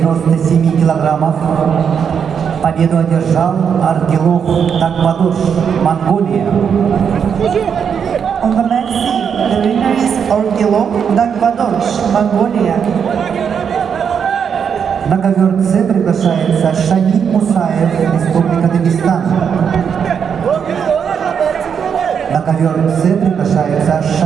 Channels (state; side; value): quieter; left; 7.2 dB